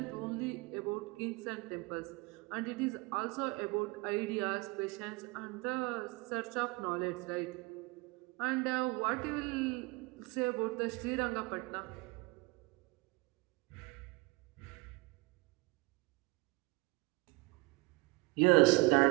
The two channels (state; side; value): quieter; left; 24.9 dB